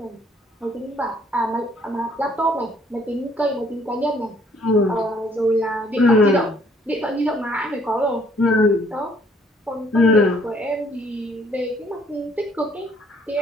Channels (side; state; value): both; normal; correlation 0.63